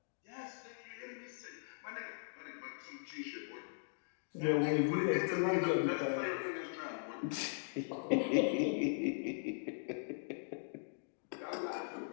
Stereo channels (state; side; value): silent; right; digital silence